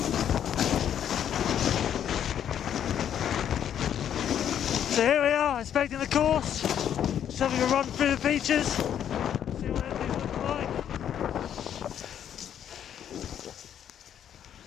So here we are, inspecting the course, just having a run through the features, see what everything's looking like.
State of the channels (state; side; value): quieter; right; 9.6 dB